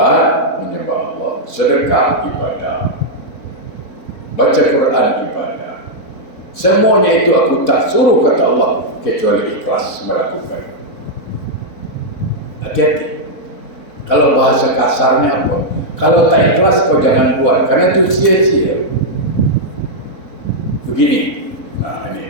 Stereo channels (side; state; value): right; late; 4.1 ms